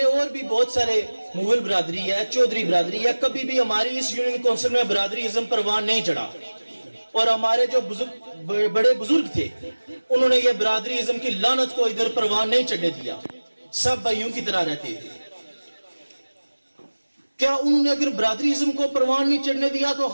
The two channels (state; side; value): inverted; both; correlation -1.00